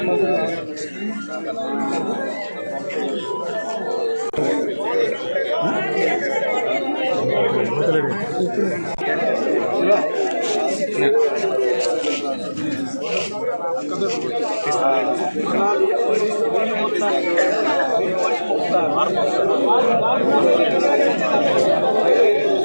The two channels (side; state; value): both; inverted; correlation -1.00